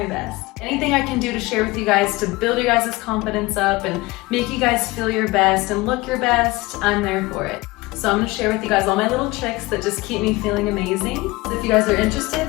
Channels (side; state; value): right; quieter; 21.8 dB